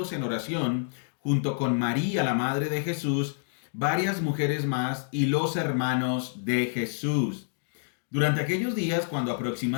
en oración, junto con María, la madre de Jesús, varias mujeres más y los hermanos de Jesús. Durante aquellos días, cuando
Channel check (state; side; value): silent; right; digital silence